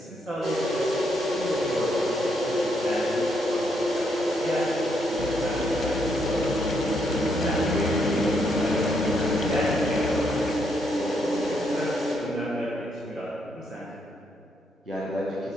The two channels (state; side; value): normal; both; correlation 0.76